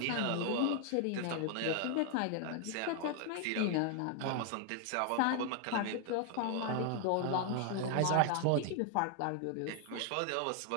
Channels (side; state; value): both; different; correlation 0.00